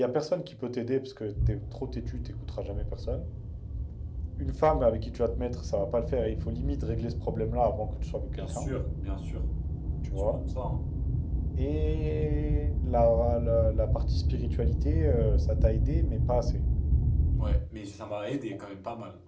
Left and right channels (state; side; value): identical; both; correlation 1.00